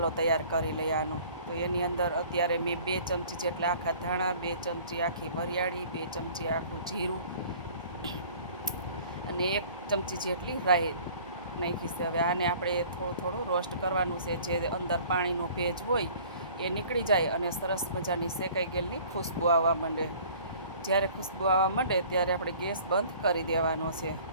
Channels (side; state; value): both; inverted; correlation -0.50